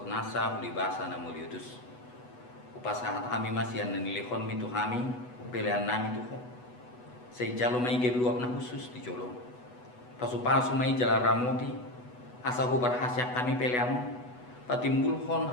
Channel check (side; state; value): right; late; 8.1 ms